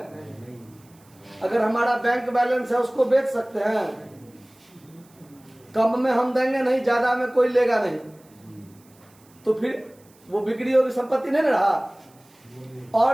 अगर हमारा बैंक बैलेंस है उसको बेच सकते हैं, कम में हम देंगे नहीं, ज्यादा में कोई लेगा नहीं, तो फिर वो बिक्री योग्य संपत्ति नहीं रहा।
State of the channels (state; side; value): noise; right; hiss, 30 dB below the sound